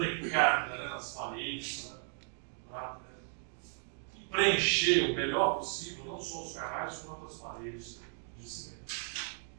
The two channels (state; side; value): silent; left; 54 dB below the other